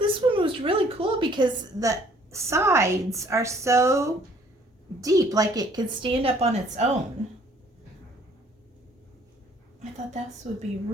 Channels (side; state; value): both; normal; correlation 0.59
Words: one was really cool because the sides are so deep, like it could stand up on its own. I thought this would be